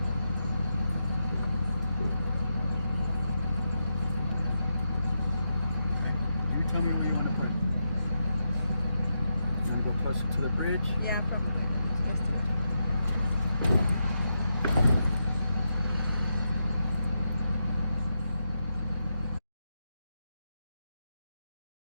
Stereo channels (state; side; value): inverted; both; correlation -0.85